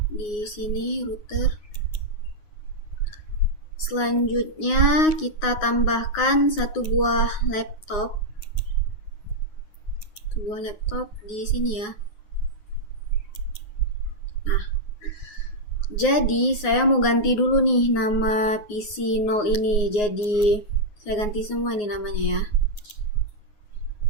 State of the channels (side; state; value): right; late; 9.5 ms